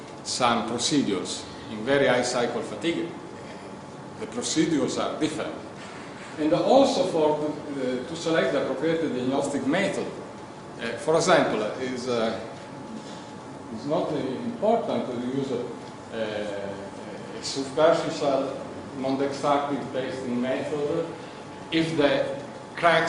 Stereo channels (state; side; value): identical; both; correlation 1.00